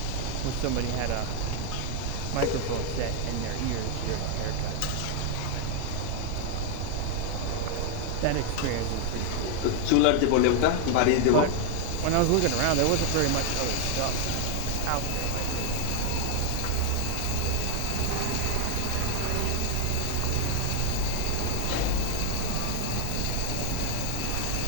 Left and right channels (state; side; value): different; both; correlation 0.00